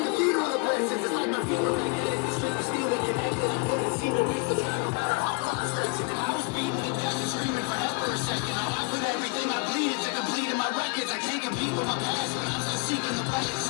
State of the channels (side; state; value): right; quieter; 31.3 dB